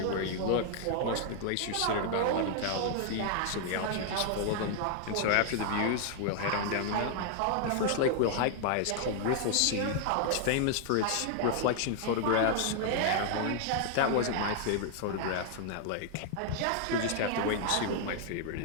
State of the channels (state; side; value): different; both; correlation 0.00